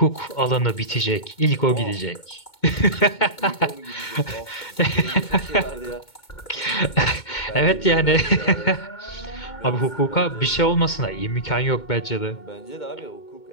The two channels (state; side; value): late; right; 2.2 ms